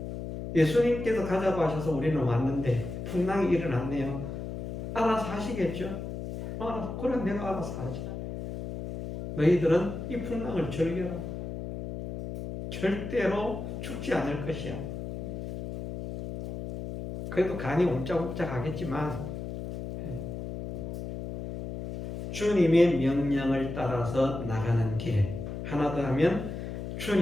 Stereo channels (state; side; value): noise; left; hum, 7 dB below the sound